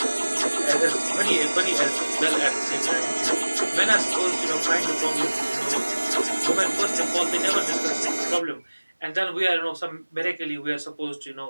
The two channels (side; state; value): both; inverted; correlation -1.00